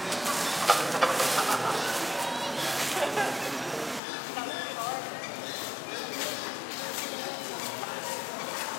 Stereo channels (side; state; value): right; drops out; at 4.0 s